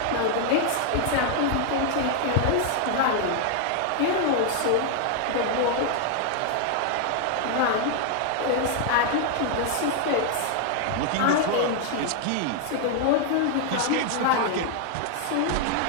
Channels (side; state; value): both; different; correlation 0.00